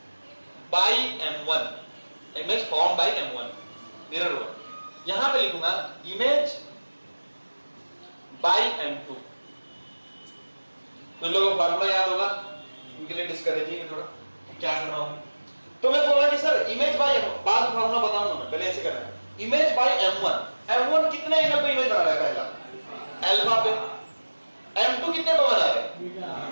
by M1, image form by M1 mirror 1, यहां पे लिखूंगा इमेज बाय M2। तो लोगों को फार्मूला याद होगा, उनके लिए डिस्करेजिंग थोड़ा क्या कर रहा हूं। तो मैं बोला कि सर इमेज बाय, बाद में फार्मूला बताऊंगा मैं, पहले ऐसे करना है, इमेज बाय M1 कितने एंगल पे इमेज बना रहा है, पहला अल्फा पे, M2 कितने पे बना रहा है,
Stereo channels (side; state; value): both; inverted; correlation -1.00